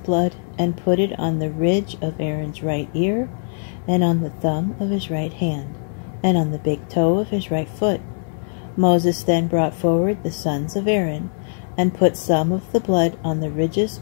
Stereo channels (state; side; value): silent; right; 65 dB below the other